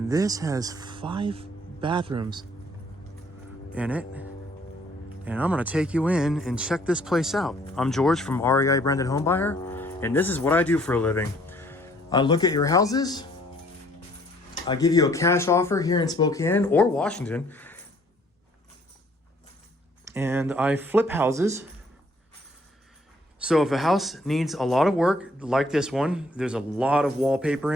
this has 5 bathrooms in it. And I'm gonna take you in and check this place out. I'm George from REI Branded Home Buyer, and this is what I do for a living. I look at your houses, I give you a cash offer here in Spokane or Washington, and I flip houses. So if a house needs a lot of work, like this one, there's a lot of wallpaper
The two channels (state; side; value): normal; both; correlation 0.62